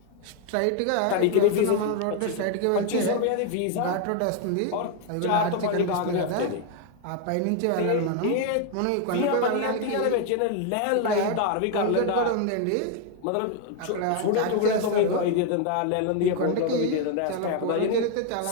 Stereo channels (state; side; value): different; both; correlation 0.01